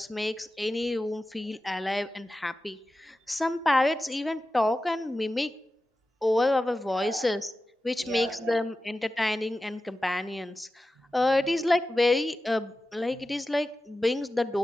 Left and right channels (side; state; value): both; normal; correlation 0.93